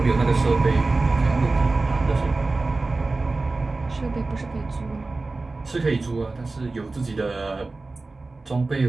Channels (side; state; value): left; quieter; 3.4 dB